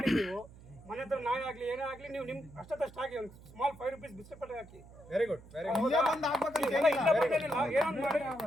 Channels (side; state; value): right; noise; hum, 20 dB below the sound